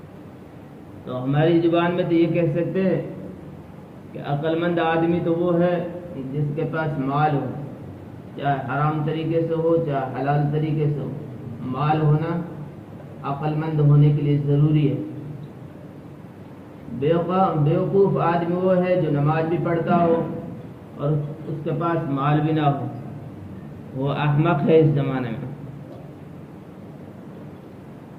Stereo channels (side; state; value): both; identical; correlation 1.00